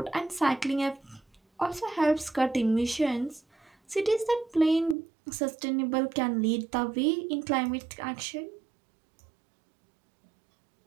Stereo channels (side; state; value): left; drops out; at 5.0 s